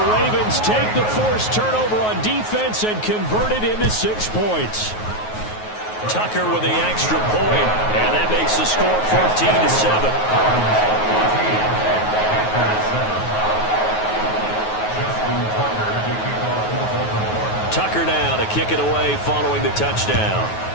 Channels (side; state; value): right; late; 9.4 ms